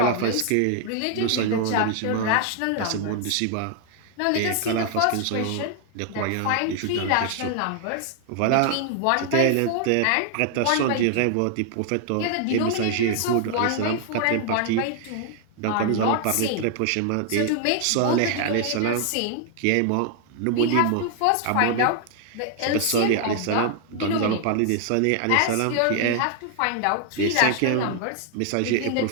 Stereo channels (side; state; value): both; different; correlation 0.00